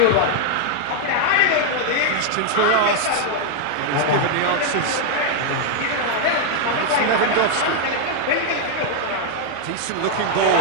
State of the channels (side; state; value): both; different; correlation 0.00